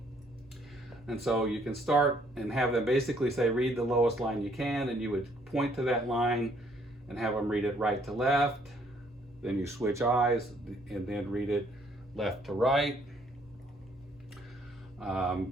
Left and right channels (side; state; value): both; normal; correlation 0.65